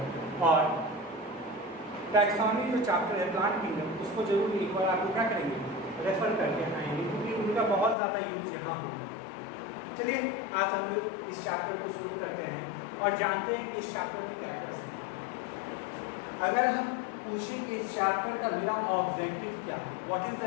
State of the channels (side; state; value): right; drops out; at 8.0 s